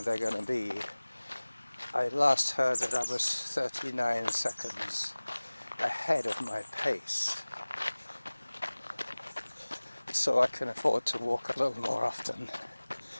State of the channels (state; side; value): inverted; both; correlation -1.00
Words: they're going to be. I last heard that I was 39 seconds ahead of my pace, so I can afford to walk a little more often